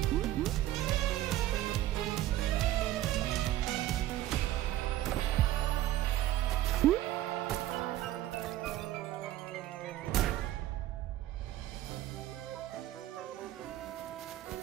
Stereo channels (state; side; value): quieter; left; 14.0 dB